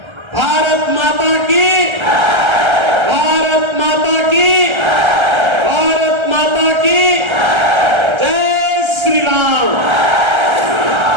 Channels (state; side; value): late; left; 1.3 ms